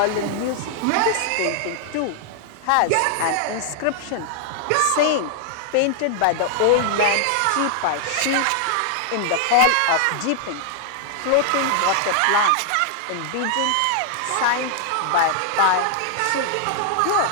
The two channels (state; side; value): different; both; correlation 0.00